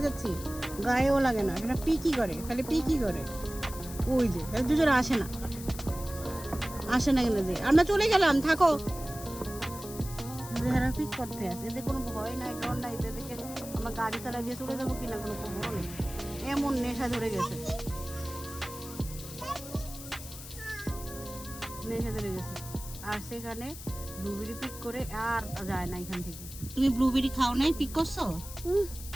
যাচ্ছি, গায়েও লাগে না। এটা পিকই করে, খালি পিকই করে। ওই যে দুজনে আসে না কেন যে আমরা চলে গেলাম, থাকো। এরা পিক করতে আসে, এদের কোনো ভয় নাই, ডর নাই। এদেরকে আমরা গাড়ি চালা দিয়ে চলে যাবো কিনা কোনো খবর নেই, এমন নেশা ধরে গেছে। আর সেখানে ব্লুবেরি পিক করে আর যায় না এখান থেকে। তুমি ব্লুবেরি খাও নাই, পিক করছো?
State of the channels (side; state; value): left; noise; hiss, 13 dB below the sound